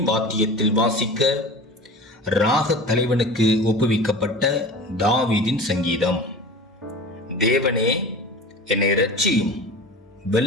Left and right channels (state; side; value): normal; both; correlation 0.36